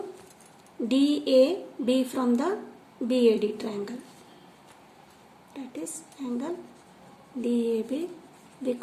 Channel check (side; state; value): both; identical; correlation 1.00